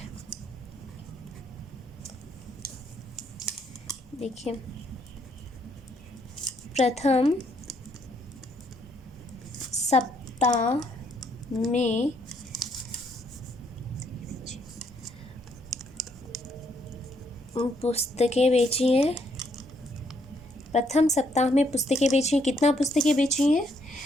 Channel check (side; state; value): both; normal; correlation 0.71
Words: देखिए, प्रथम सप्ताह में पुस्तकें बेची हैं, प्रथम सप्ताह में पुस्तकें बेची हैं। कितना पुस्तकें बेची हैं?